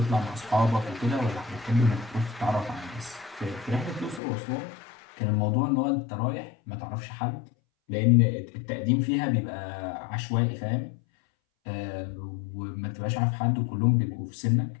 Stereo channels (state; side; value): drops out; right; at 4.2 s